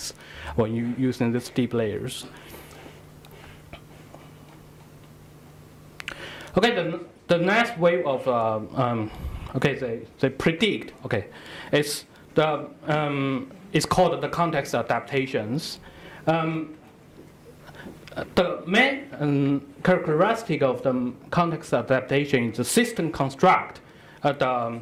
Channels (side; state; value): both; identical; correlation 1.00